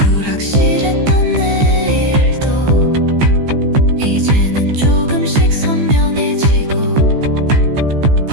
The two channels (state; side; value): late; left; 15 ms